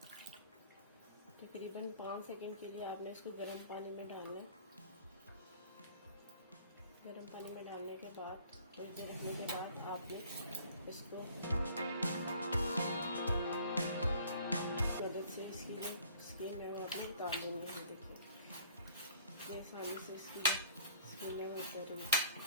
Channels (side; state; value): both; inverted; correlation -0.53